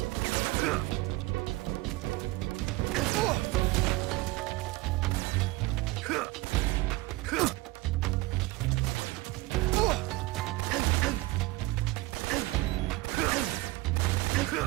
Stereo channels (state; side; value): quieter; left; 20.3 dB